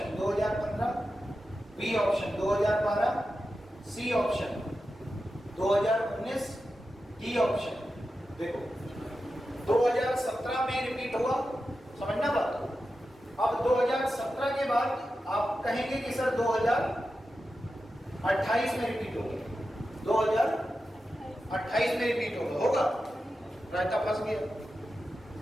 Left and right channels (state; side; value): normal; both; correlation 0.91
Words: 2015, B option 2012, C option 2019, D option. देखो 2017 में रिपीट हुआ, समझना बात। अब 2017 के बाद आप कहेंगे कि सर 2028 में रिपीट होगा, 2028 में रिपीट होगा। रायता फंस गया,